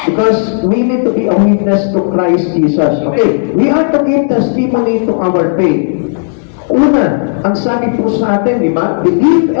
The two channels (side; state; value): right; silent; digital silence